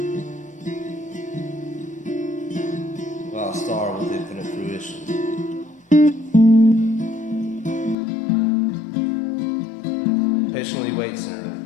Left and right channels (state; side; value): drops out; right; at 8.0 s